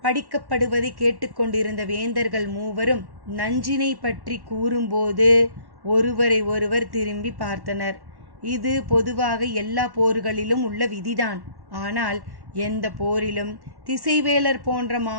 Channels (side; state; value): left; late; 1.1 ms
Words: படிக்கப்படுவதை கேட்டுக்கொண்டிருந்த வேந்தர்கள் மூவரும் நஞ்சினை பற்றி கூறும்போது ஒருவரை ஒருவர் திரும்பி பார்த்தனர். இது பொதுவாக எல்லா போர்களிலும் உள்ள விதிதான். ஆனால் எந்த போரிலும் திசைவேலர் போன்ற